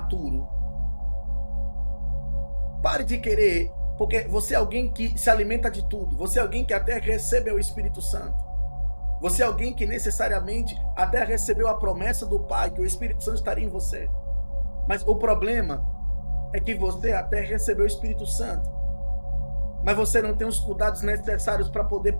Pare de querer, porque você é alguém que se alimenta de tudo. Você é alguém que até recebeu o Espírito Santo. Você é alguém que necessariamente até recebeu a promessa do Pai, que o Espírito Santo estaria em você. Mas o problema é que você até recebeu o Espírito Santo, mas você não tem os cuidados necessários para poder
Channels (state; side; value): inverted; both; correlation -1.00